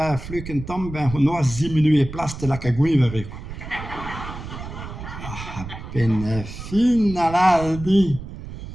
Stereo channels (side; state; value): right; noise; rumble, 11 dB below the sound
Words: fluken tam ben no 10 minutes place de la caguivere. Ben finala di.